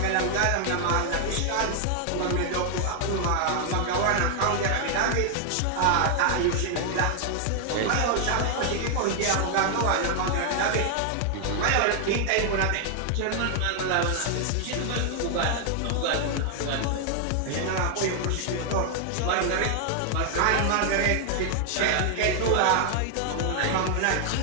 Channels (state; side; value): different; both; correlation 0.00